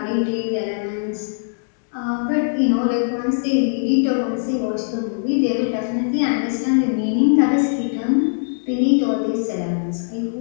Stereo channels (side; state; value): right; silent; digital silence